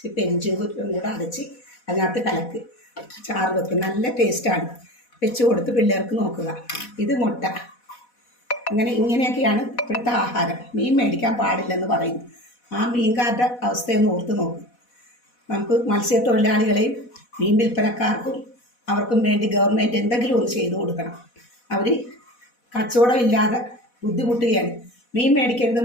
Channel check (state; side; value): late; right; 4.1 ms